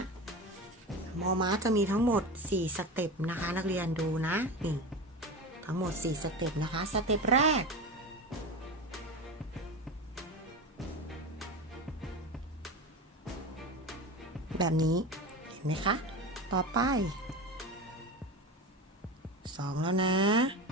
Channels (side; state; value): both; normal; correlation 0.26